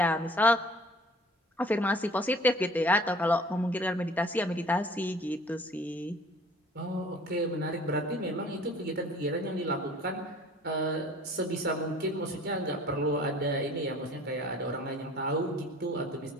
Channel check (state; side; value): normal; both; correlation 0.50